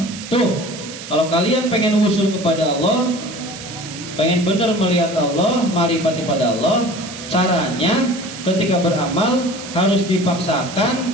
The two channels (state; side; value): noise; right; hiss, 12 dB below the sound